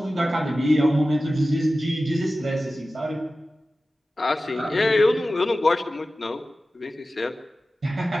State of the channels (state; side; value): normal; both; correlation 0.95